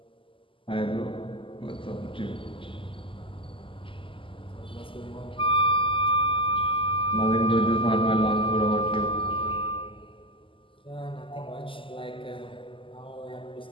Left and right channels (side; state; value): right; late; 0.25 ms